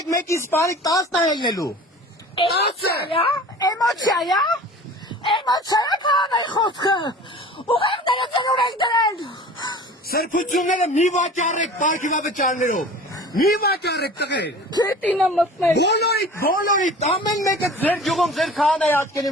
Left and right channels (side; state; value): both; normal; correlation 0.41